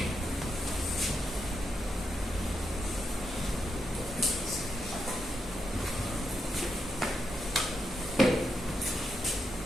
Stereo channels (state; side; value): normal; both; correlation 0.83